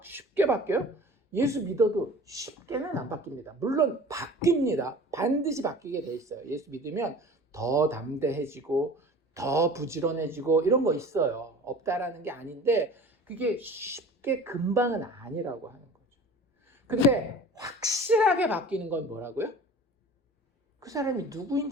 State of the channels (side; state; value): both; normal; correlation 0.41